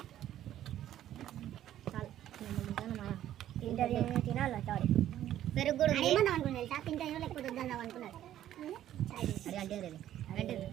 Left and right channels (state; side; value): quieter; left; 12.0 dB